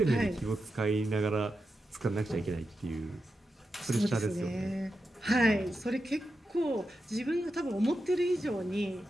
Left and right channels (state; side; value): normal; both; correlation 0.89